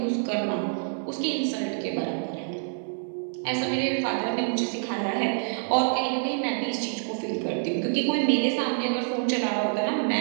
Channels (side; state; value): left; silent; digital silence